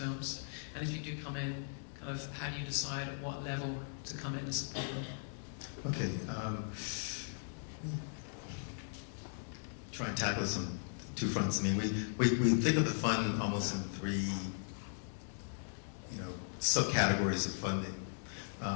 And if you do come in, kind of how do you decide at what level to come in and support them? Okay. Try and tackle this on two fronts. I mean, we think of the fund almost in three, subcategories of funding.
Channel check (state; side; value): silent; right; digital silence